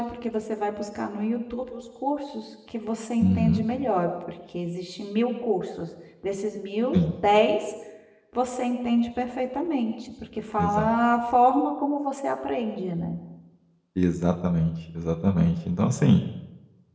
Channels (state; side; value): identical; both; correlation 1.00